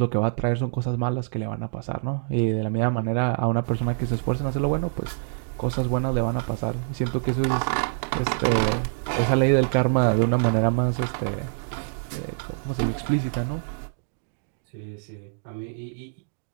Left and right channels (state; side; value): silent; left; digital silence